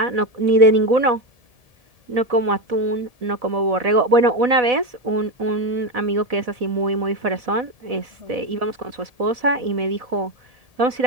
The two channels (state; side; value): late; left; 1.7 ms